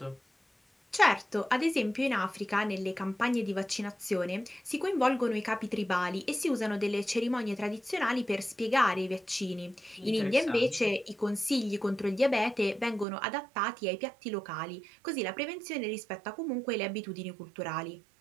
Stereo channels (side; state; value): left; drops out; at 13.1 s